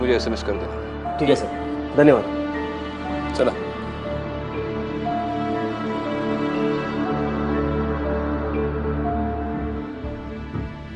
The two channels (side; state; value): both; identical; correlation 1.00